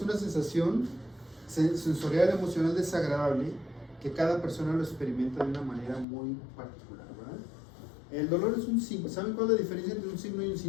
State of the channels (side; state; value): right; drops out; at 6.1 s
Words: sensación sensorial, emocional desagradable que cada persona lo experimenta de una manera muy particular, ¿verdad? El dolor es un síntoma. ¿Saben cuál es la diferencia entre un signo y un